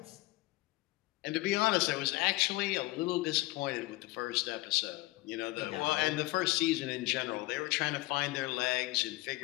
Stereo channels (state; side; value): quieter; right; 20.7 dB